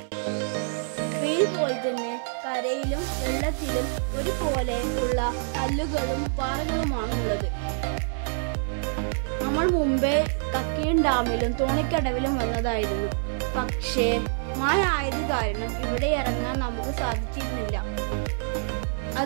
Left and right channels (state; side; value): silent; left; 61 dB below the other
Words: പോലെ തന്നെ കരയിലും വെള്ളത്തിലും ഒരുപോലെയുള്ള കല്ലുകളും പാറകളുമാണ് ഉള്ളത്. നമ്മൾ മുമ്പേ കക്കയം ഡാമിലും തോണിക്കടവിലും വന്നതായിരുന്നു. പക്ഷേ മഴ ആയത് കാരണം ഇവിടെ ഇറങ്ങാൻ നമുക്ക് സാധിച്ചിരുന്നില്ല.